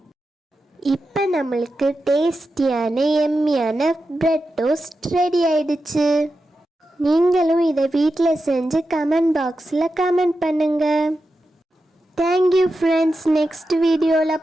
இப்போ நம்மளுக்கு டேஸ்டியான எம்மியான பிரெட் டோஸ்ட் ரெடி ஆயிடுச்சு. நீங்களும் இதை வீட்டில் செஞ்சு கமெண்ட் பாக்ஸில் கமெண்ட் பண்ணுங்க. Thank you friends. நெக்ஸ்ட்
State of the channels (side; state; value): both; normal; correlation 0.90